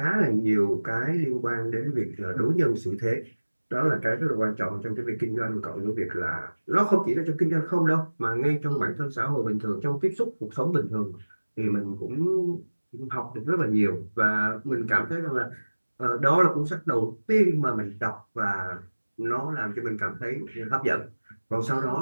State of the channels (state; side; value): inverted; both; correlation -1.00